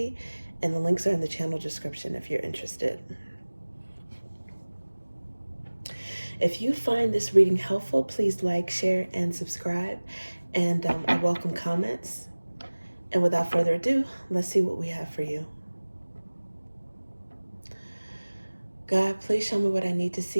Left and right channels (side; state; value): both; inverted; correlation -1.00